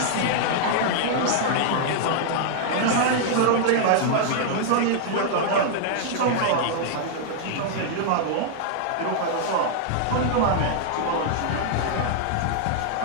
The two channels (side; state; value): both; different; correlation -0.01